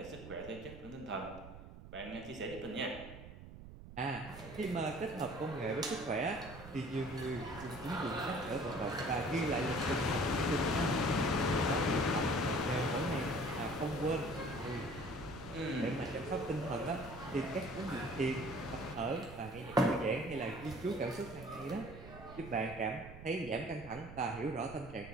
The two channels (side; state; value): right; noise; rumble, 14 dB below the sound